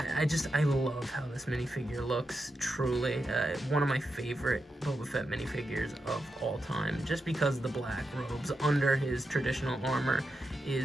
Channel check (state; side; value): normal; both; correlation 0.87